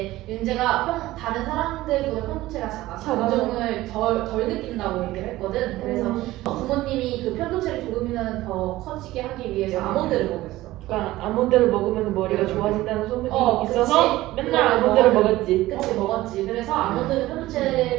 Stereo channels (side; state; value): left; quieter; 17.0 dB